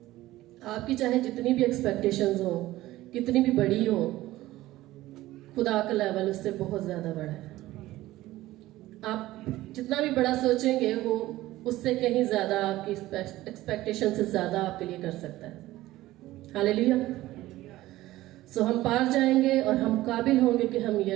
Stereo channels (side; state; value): left; quieter; 16.5 dB